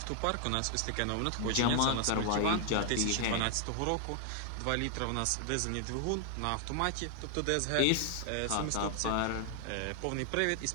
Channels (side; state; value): both; different; correlation 0.00